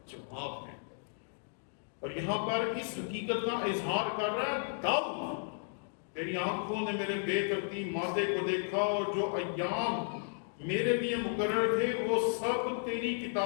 جواب ہے، اور یہاں پر اس حقیقت کا اظہار کر رہا ہے داؤد، تیری آنکھوں نے میرے بے ترتیب مادے کو دیکھا، اور جو ایام میرے لیے مقرر تھے وہ سب تیری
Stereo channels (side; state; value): right; silent; digital silence